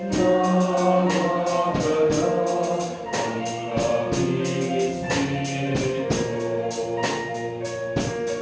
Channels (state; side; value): identical; both; correlation 1.00